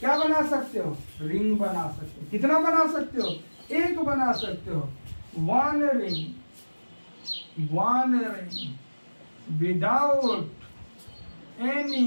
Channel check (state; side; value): inverted; both; correlation -1.00